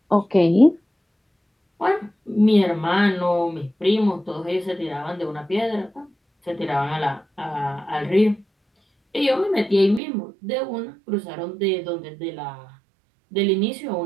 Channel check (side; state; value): left; drops out; at 10.0 s